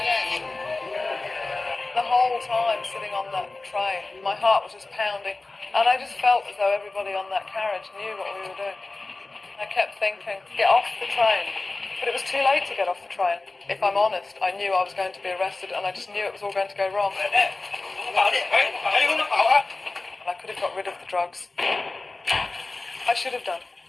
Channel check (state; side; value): quieter; right; 3.3 dB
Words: The whole time sitting on that train, my heart was just pounding. And I just felt as though everybody on that carriage knew what we were doing. I kept thinking, get off the train. But it was too late to get off the train. If I'm honest, I knew I was going to be arrested and I just knew it was all going to go wrong. And I could have got rid of the drugs. I should have done.